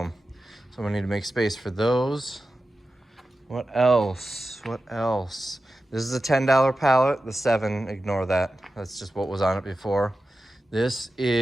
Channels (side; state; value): both; normal; correlation 0.93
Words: So I need to make space for those. What else? What else? This is a $10 pallet. The 7, ignore that. That's just what was on it before. This